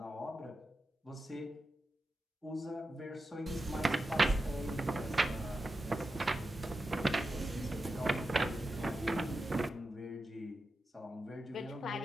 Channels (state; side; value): normal; both; correlation 0.91